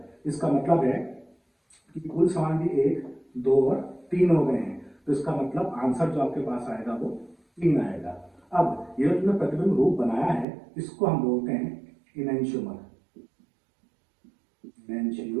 इसका मतलब है कि कुल समावयवी 1, 2 और 3 हो गए हैं, तो इसका मतलब आंसर जो आपके पास आएगा वो 3 आएगा। अब ये जो तुमने प्रतिबिंब रूप बनाया है, इसको हम बोलते हैं इनैंशियोमर।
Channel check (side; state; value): left; drops out; at 10.5 s